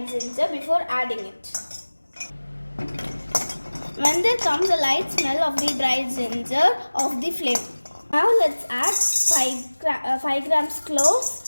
ginger before adding it. When there comes a light smell of the dry ginger off the flame. Now let's add 5 grams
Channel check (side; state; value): both; inverted; correlation -1.00